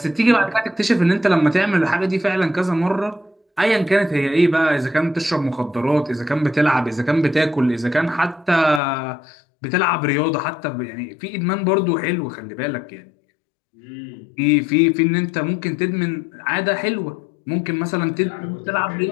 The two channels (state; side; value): drops out; right; at 8.8 s